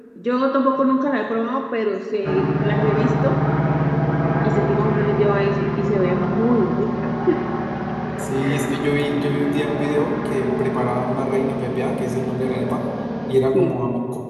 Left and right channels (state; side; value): identical; both; correlation 1.00